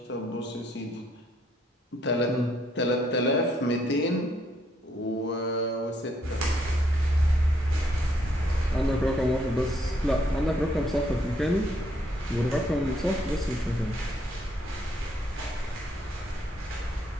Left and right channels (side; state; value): both; normal; correlation 0.71